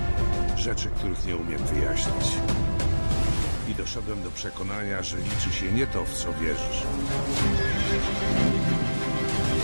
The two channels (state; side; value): inverted; both; correlation -1.00